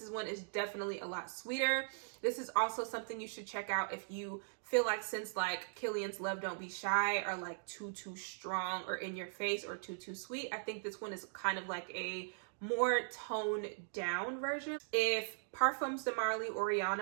one is definitely a lot sweeter. This is also something you should check out if you feel like scents like Killian's Love Don't Be Shy are like too strong or in your face or too sweet. I think this one is kind of like a more toned down version. If Parfums de Marly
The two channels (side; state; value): left; silent; digital silence